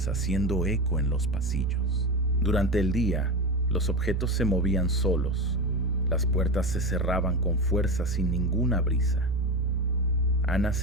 haciendo eco en los pasillos. Durante el día, los objetos se movían solos, las puertas se cerraban con fuerza sin ninguna brisa. Ana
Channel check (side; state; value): both; normal; correlation 0.21